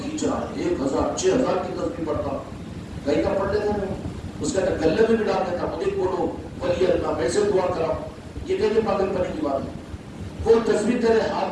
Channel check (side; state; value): both; identical; correlation 1.00